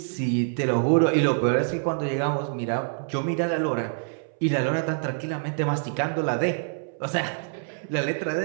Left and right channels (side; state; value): left; silent; 61 dB below the other